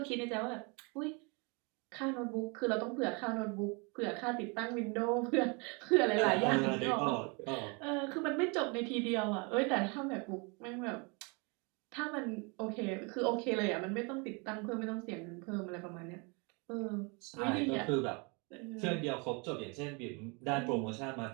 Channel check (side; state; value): left; quieter; 31.3 dB